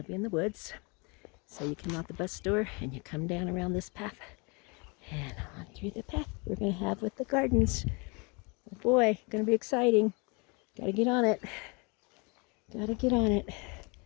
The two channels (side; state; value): right; quieter; 30.5 dB